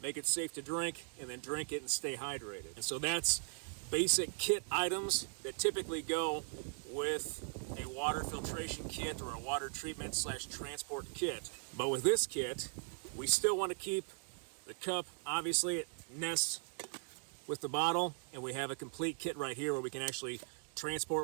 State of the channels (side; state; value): left; silent; 52 dB below the other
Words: make it safe to drink, and then drink it and stay hydrated. And so that's basic kit items that typically go with a water filtration kit or a water treatment / transport kit. But with this kit, we still want to keep the cup, obviously it nests with the bottle, and we have a complete kit right here where we can actually